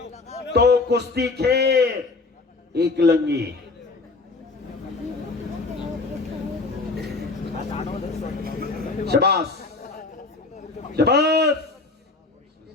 तो कुस्ती खेळ एकलंगी। शाबास शाबास।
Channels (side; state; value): right; quieter; 3.6 dB